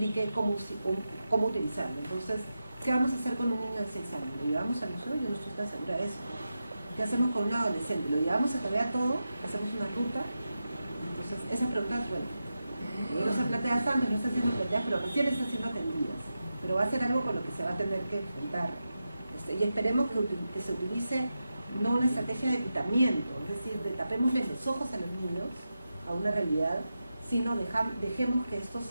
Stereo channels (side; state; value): both; inverted; correlation -0.90